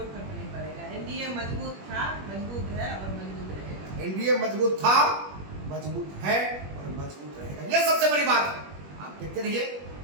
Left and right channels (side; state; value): left; late; 21 ms